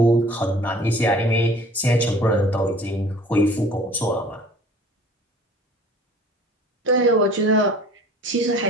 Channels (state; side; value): normal; both; correlation 0.48